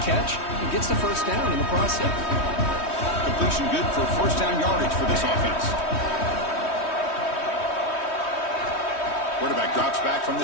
catch and gets the 1st down in the process. Completion good for 1st down yardage for this offense. Quarterback drops back from the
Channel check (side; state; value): right; late; 3.1 ms